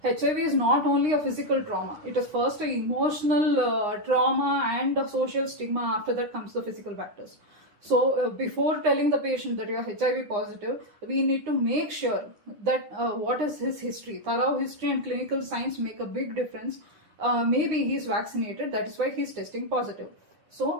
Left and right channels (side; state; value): left; late; 10 ms